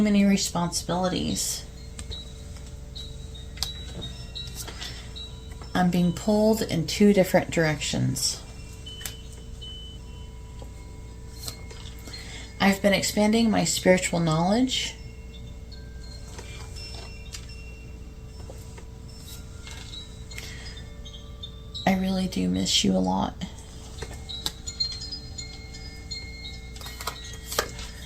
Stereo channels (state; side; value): identical; both; correlation 1.00